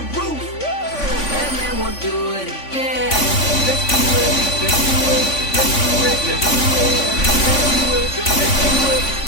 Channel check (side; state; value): right; late; 3.5 ms